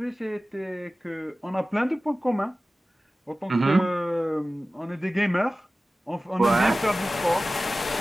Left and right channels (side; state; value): both; normal; correlation 0.96